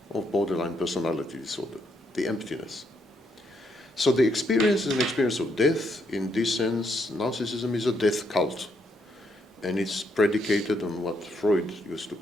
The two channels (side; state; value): both; normal; correlation 0.76